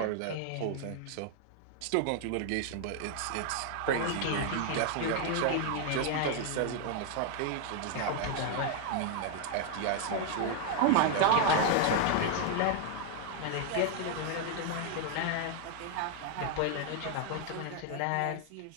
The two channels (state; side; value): different; both; correlation 0.00